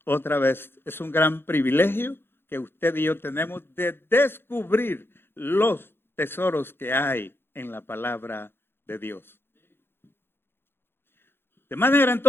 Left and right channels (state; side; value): late; right; 0.11 ms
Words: Otra vez, es un gran privilegio que usted y yo tenemos de descubrir los tesoros que hay en la palabra de Dios. De manera